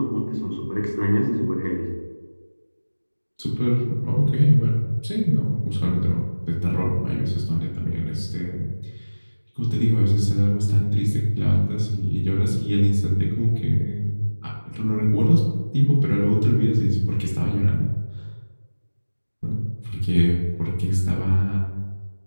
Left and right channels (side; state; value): both; inverted; correlation -1.00